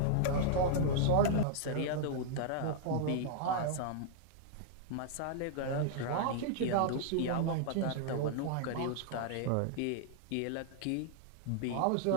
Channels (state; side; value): different; both; correlation -0.01